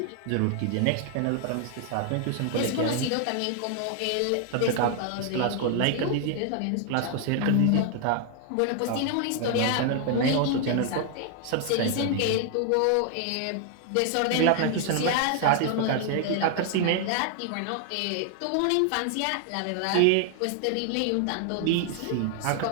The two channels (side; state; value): both; different; correlation 0.00